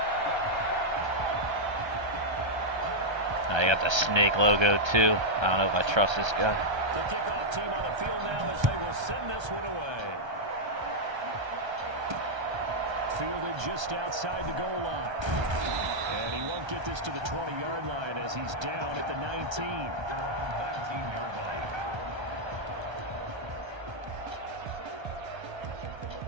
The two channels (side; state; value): left; late; 1.3 ms